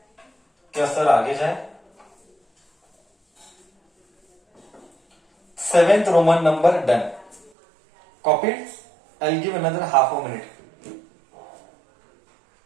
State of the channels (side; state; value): left; drops out; at 7.5 s